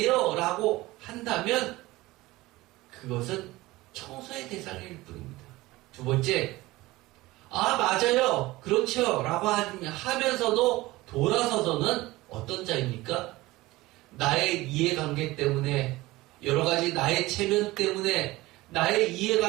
라고 한다면 그것은 청소의 대상일 뿐입니다. 두 번째, 아 맞아요 그렇죠 라고 하면서도 돌아서서는 어떤 자입니까? 나의 이해관계 때문에 여러가지 나의 체면 때문에 나의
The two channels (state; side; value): quieter; left; 19.3 dB